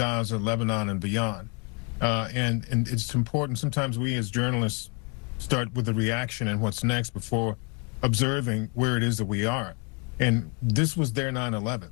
Lebanon, and beyond. And it's important, sometimes we as journalists start with the reaction and what's next before observing where it is that we are. And this was their 9/11.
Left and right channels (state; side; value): quieter; right; 33.2 dB